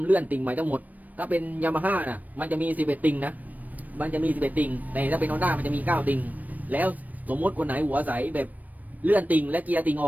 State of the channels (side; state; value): left; late; 0.079 ms